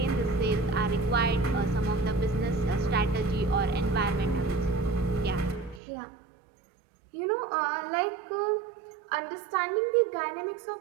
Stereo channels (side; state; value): left; drops out; at 5.8 s